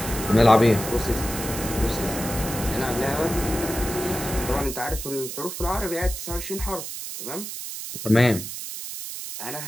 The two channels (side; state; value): right; noise; hiss, 7 dB below the sound